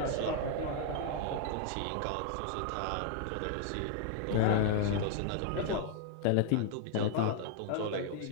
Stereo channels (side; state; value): both; different; correlation 0.00